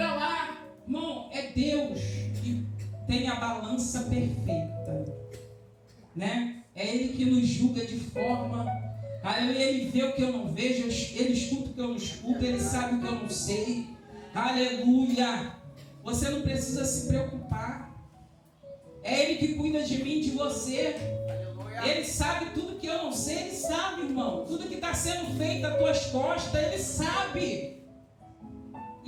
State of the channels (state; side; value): identical; both; correlation 1.00